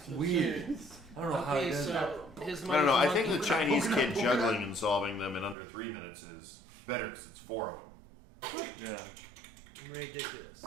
weird. I don't know how he Okay, does so that. his I don't know. I monkey think the for Chinese Pokemon. kid juggling and solving them in under 3 minutes is better because it's 4 of them. Yeah. Ridiculous.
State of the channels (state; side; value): drops out; left; at 5.6 s